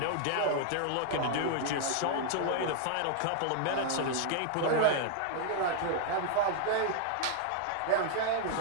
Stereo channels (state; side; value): different; both; correlation 0.00